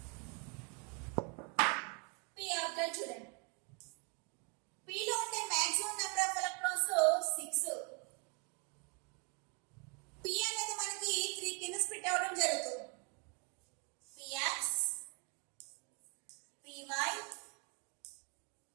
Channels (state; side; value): quieter; left; 35.0 dB